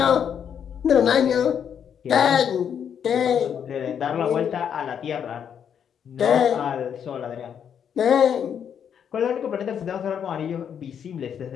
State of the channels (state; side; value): quieter; right; 8.2 dB